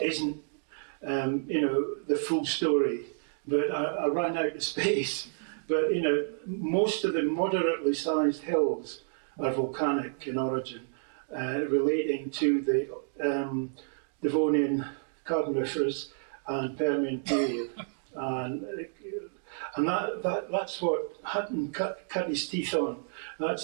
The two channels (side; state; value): left; silent; digital silence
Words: isn't, the full story, but I ran out of space. But, most of the moderately sized hills are volcanic in origin, relating to the Devonian Carboniferous and Permian period. And that's what Hutton cut his teeth on.